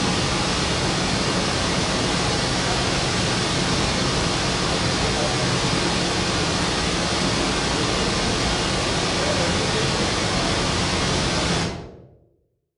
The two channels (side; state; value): both; identical; correlation 1.00